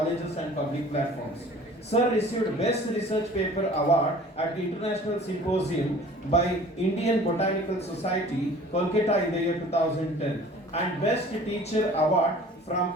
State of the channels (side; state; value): both; normal; correlation 0.47